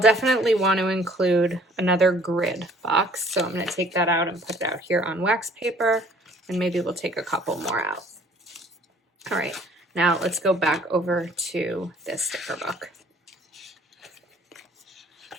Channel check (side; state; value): both; normal; correlation 0.57